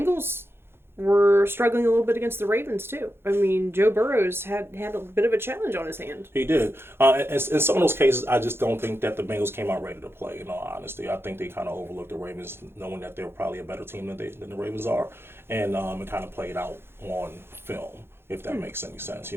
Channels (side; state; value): left; late; 0.11 ms